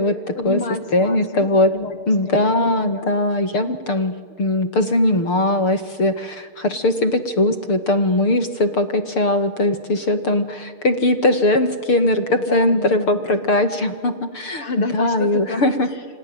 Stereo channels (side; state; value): right; late; 6.7 ms